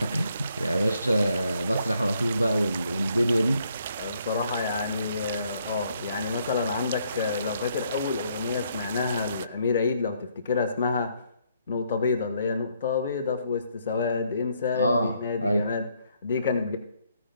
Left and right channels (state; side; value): inverted; both; correlation -0.71